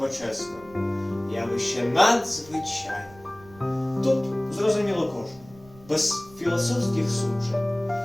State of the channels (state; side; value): noise; right; rumble, 23 dB below the sound